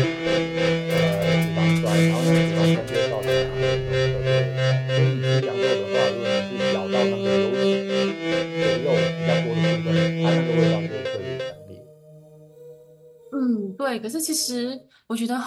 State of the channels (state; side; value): identical; both; correlation 1.00